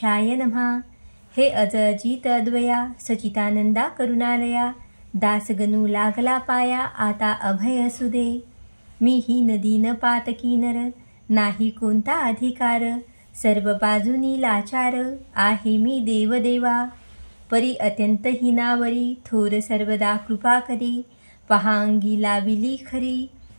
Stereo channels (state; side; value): inverted; both; correlation -1.00